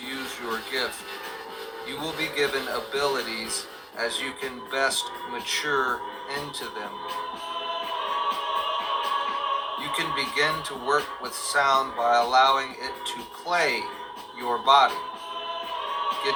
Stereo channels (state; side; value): identical; both; correlation 1.00